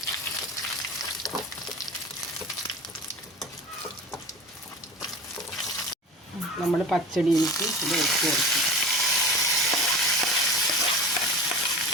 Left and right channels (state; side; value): normal; both; correlation 0.35